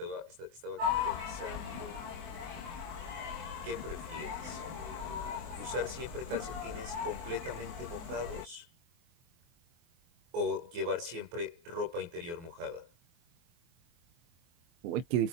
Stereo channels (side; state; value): left; late; 24 ms